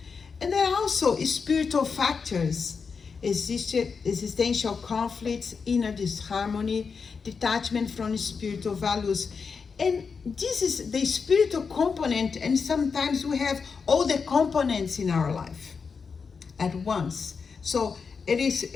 And there are also spiritual factors, existential conflicts, inner disharmony, detachment from spiritual values. And this is the spiritual component, and sometimes we have all the components in our life at once. So we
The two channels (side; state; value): right; quieter; 5.4 dB